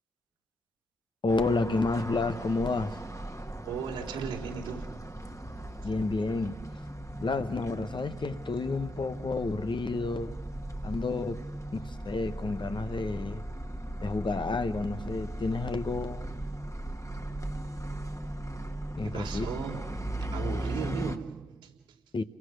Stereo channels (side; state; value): both; normal; correlation 0.79